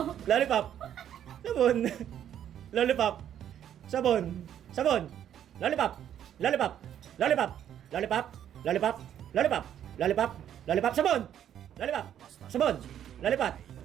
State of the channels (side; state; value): left; quieter; 10.2 dB